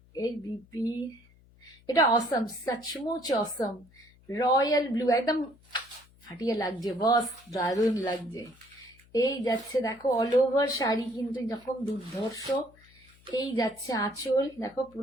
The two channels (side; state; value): left; noise; hum, 28 dB below the sound